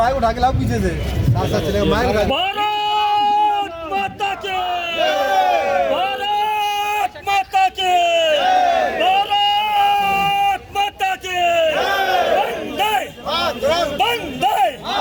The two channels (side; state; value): both; identical; correlation 1.00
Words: माइक उठा के लाओ पीछे से, साथ साथ चलेगा माइक उठा। भारत माता की, भारत माता की, भारत माता की, वंदे वंदे